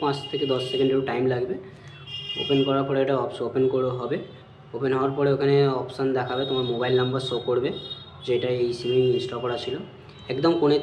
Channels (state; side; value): identical; both; correlation 1.00